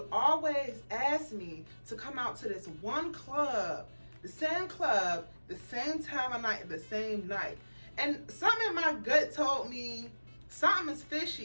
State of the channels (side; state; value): both; inverted; correlation -1.00